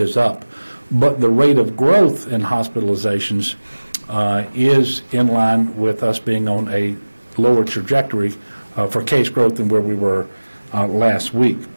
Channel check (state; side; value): inverted; both; correlation -1.00